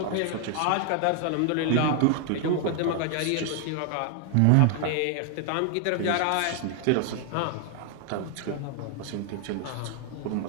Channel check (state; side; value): different; both; correlation 0.00